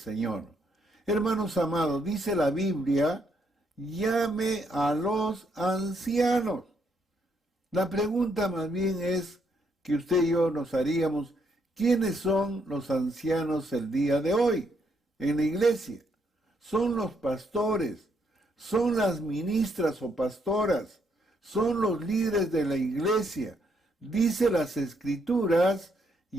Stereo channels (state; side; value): normal; both; correlation 0.74